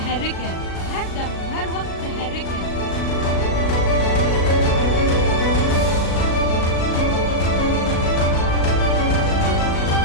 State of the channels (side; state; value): right; late; 37 ms